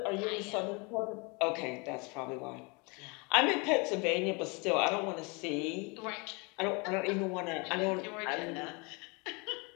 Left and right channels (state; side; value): quieter; right; 29.8 dB